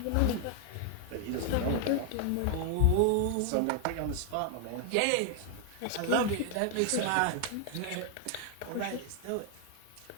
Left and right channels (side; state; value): both; different; correlation 0.00